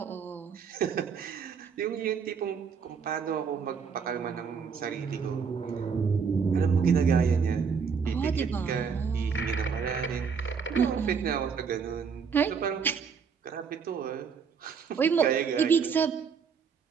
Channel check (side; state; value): left; quieter; 6.2 dB